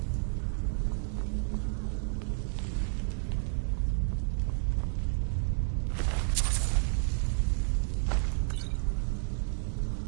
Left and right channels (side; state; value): left; silent; digital silence